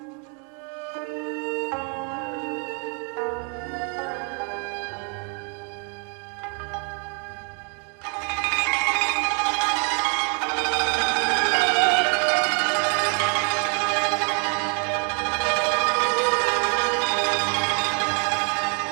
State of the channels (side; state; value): left; quieter; 37.9 dB